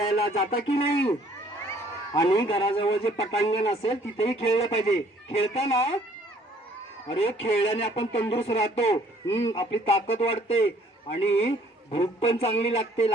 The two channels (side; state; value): both; normal; correlation 0.59